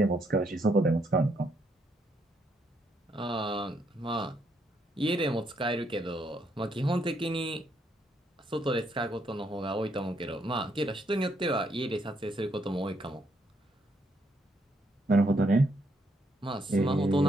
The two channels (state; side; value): normal; both; correlation 0.74